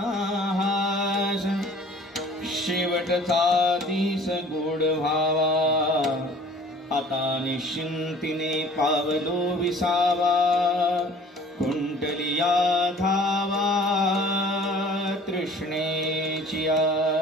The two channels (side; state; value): both; normal; correlation 0.49